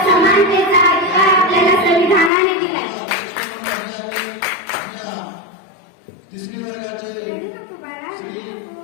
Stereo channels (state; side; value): drops out; right; at 2.3 s